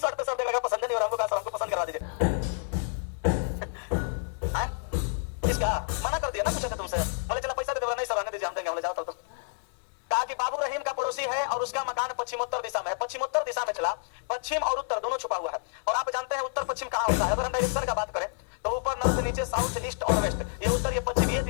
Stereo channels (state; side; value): silent; right; 59 dB below the other